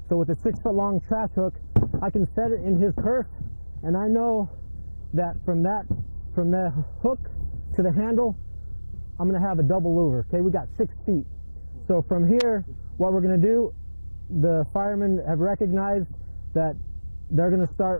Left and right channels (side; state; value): both; inverted; correlation -1.00